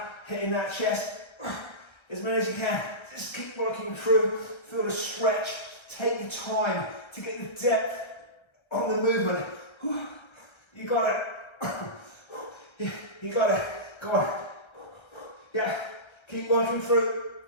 hitting that chest as many as you can. Just keep working through, feel the stretch. Take your time to get the depth on the movement. You got it. You got it. Go on. Yeah, keep working through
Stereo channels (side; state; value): right; late; 1.3 ms